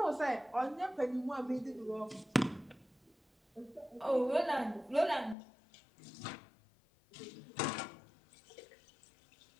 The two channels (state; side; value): drops out; right; at 5.4 s